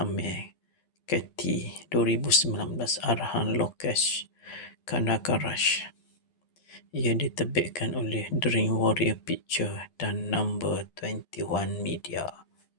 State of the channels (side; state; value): right; late; 12 ms